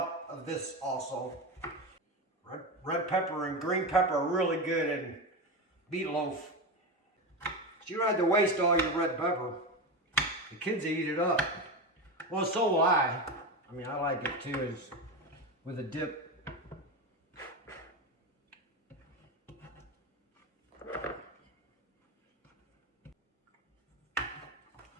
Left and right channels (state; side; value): normal; both; correlation 0.19